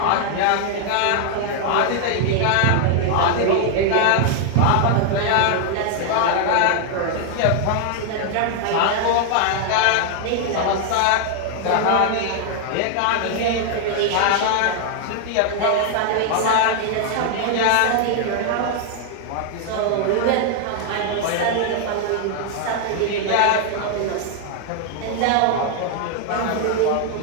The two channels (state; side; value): different; both; correlation 0.00